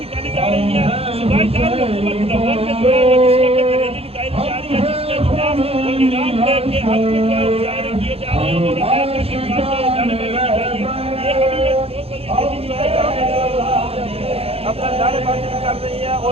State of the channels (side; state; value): left; late; 0.29 ms